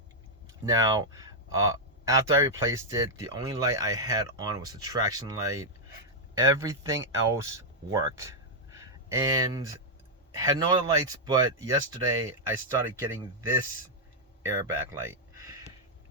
Now, after I replaced it, the only light I had on was the traction light. Everything else worked, and had no other lights. But yesterday I started getting this airbag light.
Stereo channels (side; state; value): both; normal; correlation -0.04